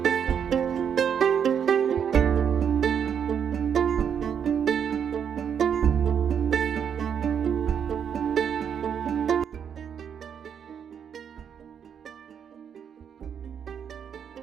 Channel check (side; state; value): left; quieter; 7.9 dB